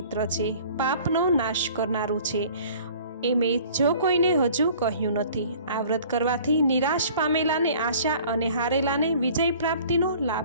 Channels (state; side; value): inverted; both; correlation -0.50